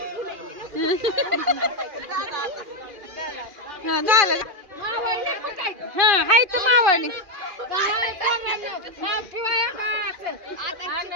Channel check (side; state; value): left; late; 2.4 ms